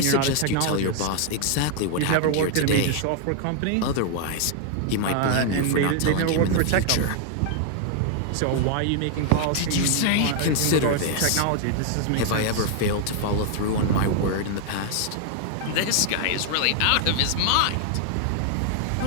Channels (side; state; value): both; different; correlation 0.00